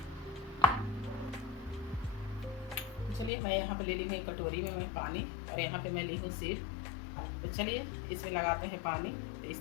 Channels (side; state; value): right; drops out; at 3.3 s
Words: तो चलिए मैं यहाँ पे ले ली हूँ एक कटोरी में मैं पानी, और यहाँ पे मैं ली हूँ सीट। तो चलिए इसमें लगाते हैं पानी। तो